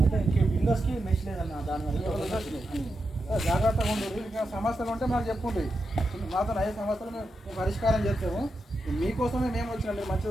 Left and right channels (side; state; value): both; normal; correlation 0.87